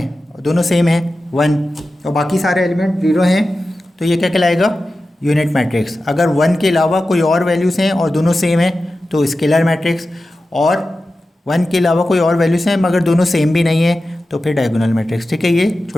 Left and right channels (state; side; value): normal; both; correlation 0.93